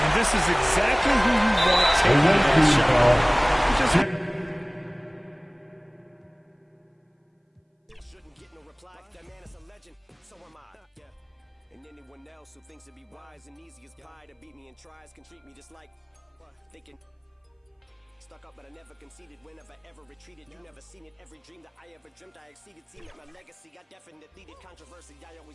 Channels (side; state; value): both; identical; correlation 1.00